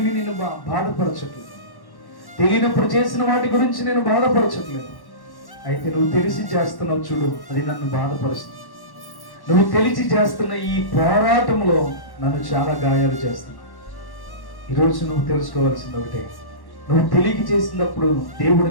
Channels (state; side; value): late; right; 1.1 ms